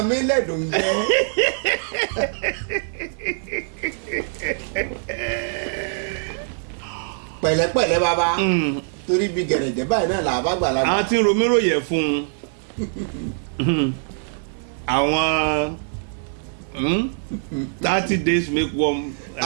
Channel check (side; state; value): left; silent; 64 dB below the other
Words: mí lẹ́dùn jẹ́. pẹ̀lẹ́pẹ̀lẹ́ bàbá torí bí gẹ̀rẹ̀jẹ̀ báyìí náà là bá gbà lágbà. àwọn tí ń romírò yẹ fún àwọn 30 days make one.